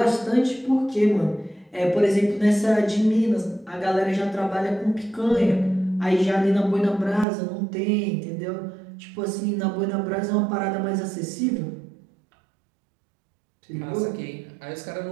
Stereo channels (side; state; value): left; drops out; at 7.2 s